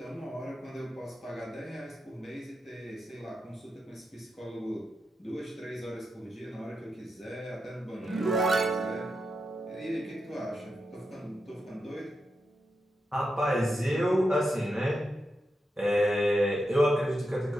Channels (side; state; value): both; normal; correlation 0.87